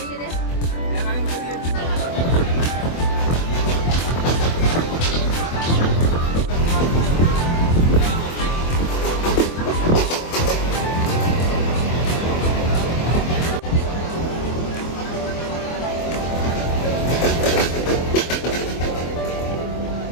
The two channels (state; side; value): late; right; 24 ms